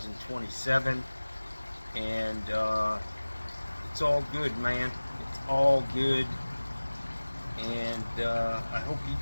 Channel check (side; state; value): both; inverted; correlation -1.00